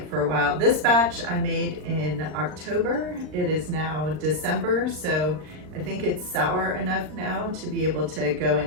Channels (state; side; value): late; left; 39 ms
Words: for a while. This batch I made in October. It is now December, so I think it's sour enough now to be able to go